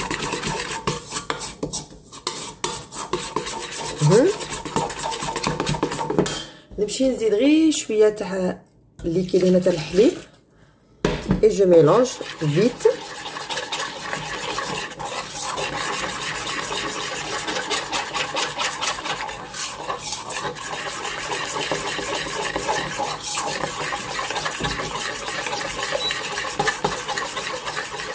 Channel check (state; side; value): identical; both; correlation 1.00